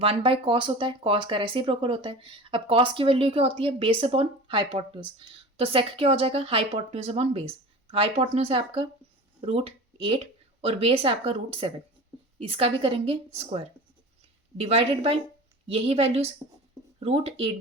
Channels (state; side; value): normal; both; correlation 0.35